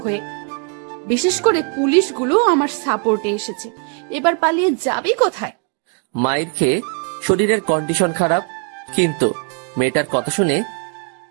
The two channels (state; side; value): quieter; left; 38.9 dB